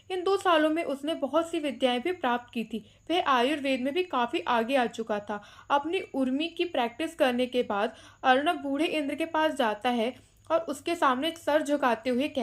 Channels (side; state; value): both; identical; correlation 1.00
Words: इन 2 सालों में उसने बहुत सी विद्याएं भी प्राप्त की थी। वह आयुर्वेद में भी काफ़ी आगे आ चुका था। अपनी उर्मी की प्रैक्टिस करने के बाद अर्नब बूढ़े इंद्र के पास जाता है और उसके सामने सर झुकाते हुए